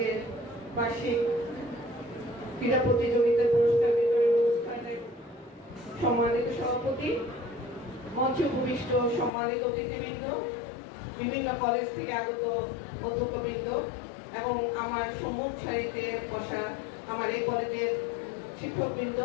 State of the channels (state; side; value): drops out; right; at 9.3 s